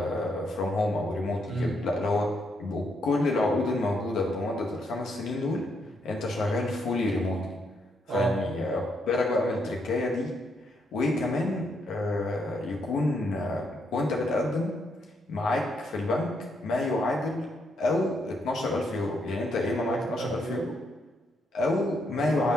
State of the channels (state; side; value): normal; both; correlation 0.76